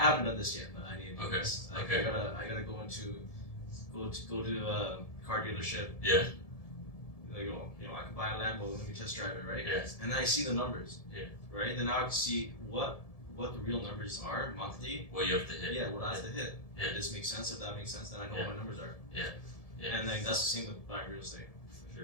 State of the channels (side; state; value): right; late; 1.7 ms